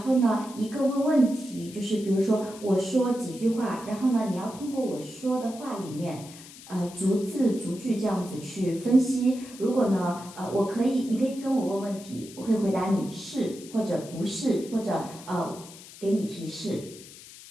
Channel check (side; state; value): left; noise; hiss, 18 dB below the sound